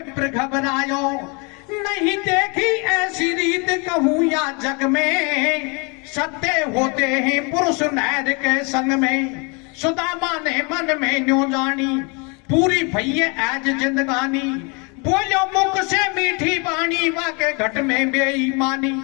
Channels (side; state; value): right; quieter; 31.7 dB